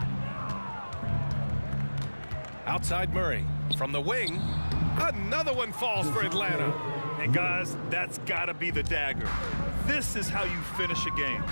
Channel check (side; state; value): both; inverted; correlation -1.00